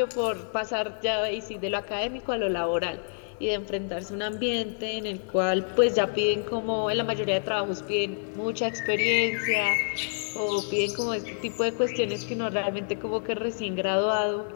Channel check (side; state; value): right; silent; 56 dB below the other